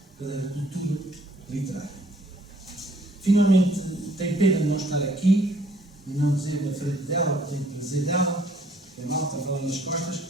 cadeira de cultura literária. Finalmente, tenho pena de não estar aqui e não dizer na frente dela, porque tenho prazer dela, é malta, vai lá nas costas,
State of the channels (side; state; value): both; normal; correlation 0.61